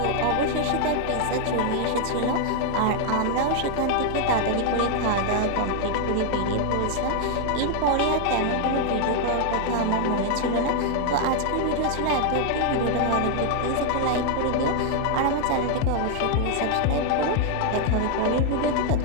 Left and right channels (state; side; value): different; both; correlation 0.00